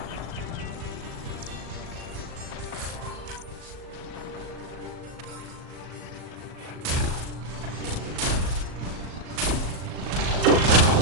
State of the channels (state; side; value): late; left; 38 ms